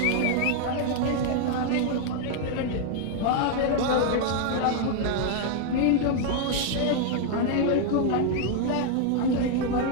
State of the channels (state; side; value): different; both; correlation 0.00